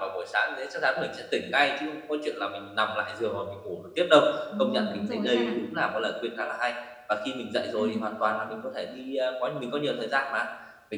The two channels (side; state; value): both; identical; correlation 1.00